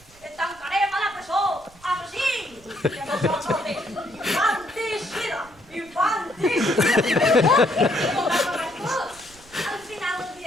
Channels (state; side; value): noise; right; rumble, 26 dB below the sound